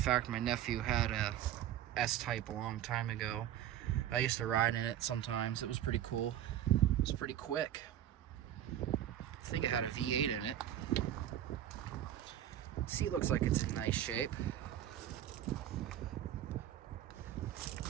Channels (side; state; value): left; quieter; 11.5 dB